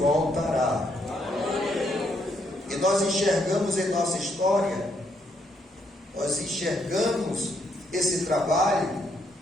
E nós enxergamos em nossa história, nós enxergamos esse trabalho,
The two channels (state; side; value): normal; both; correlation 0.74